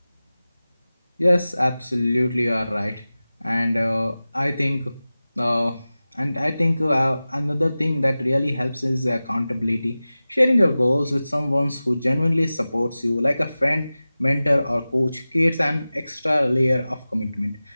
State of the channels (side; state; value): both; inverted; correlation -0.96